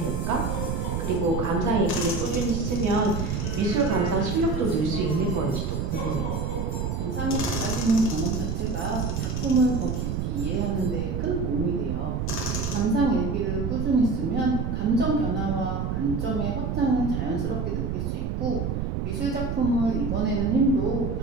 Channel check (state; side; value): noise; right; rumble, 1 dB below the sound